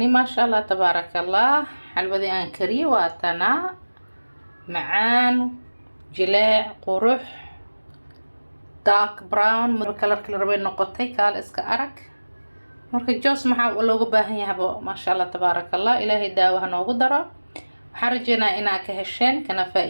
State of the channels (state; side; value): inverted; both; correlation -1.00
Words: ما شاء الله تبارك الله. حلودي أن كري واتنا معان جلاع قروح دارك براون كلر ربين نقطي كال اسك أرك مركا جوس maxaa loogu baahan yahay ما شاء الله تبارك الله. إلهي daawaha noogu daro. waxaan rajeynaa inaa ka hesheen kana